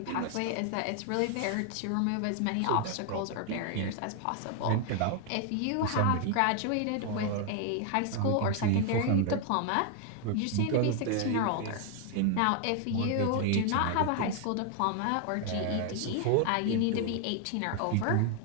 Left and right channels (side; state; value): both; different; correlation 0.00